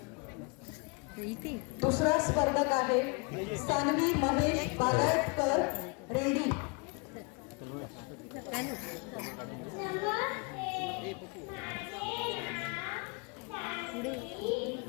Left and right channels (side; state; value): right; quieter; 31.4 dB